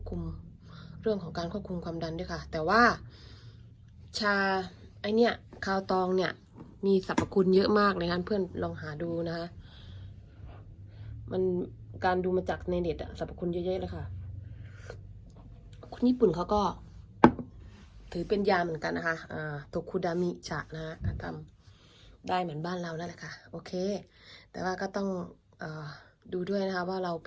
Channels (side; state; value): both; identical; correlation 1.00